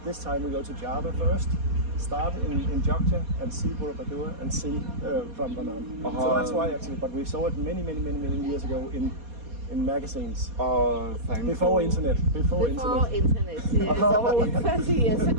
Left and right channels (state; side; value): late; left; 4.2 ms